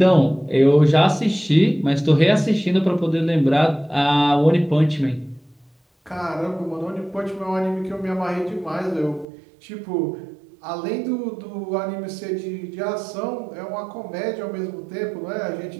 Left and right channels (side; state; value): left; drops out; at 9.2 s